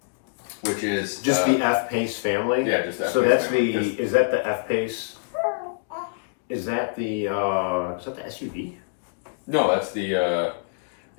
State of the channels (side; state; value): right; silent; digital silence